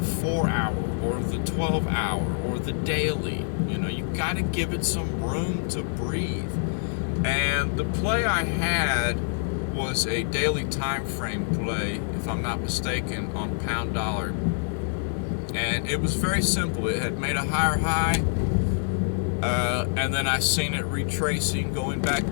or the 12-hour or the daily. You got to give it some room to breathe. And the play I had was a daily time frame play, if I'm not mistaken, on pound dollar. And it was very simple. It had made a higher high, and then I seen it retracing, going back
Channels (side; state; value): right; silent; digital silence